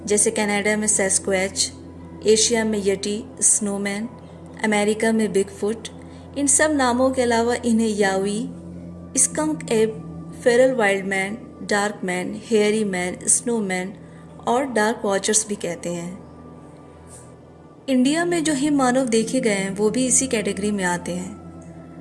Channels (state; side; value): identical; both; correlation 1.00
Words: जैसे कनाडा में सैस्क्वैच, एशिया में यटी, स्नोमैन, अमेरिका में बिगफुट। इन सब नामों के अलावा इन्हें यावी, स्कंक एब, Feral wild man, dark man, hairy man, snowman और डार्क वॉचर्स भी कहते हैं। इंडिया में जो हिम मानव देखे गए हैं वो भी इसी कैटेगरी में आते हैं।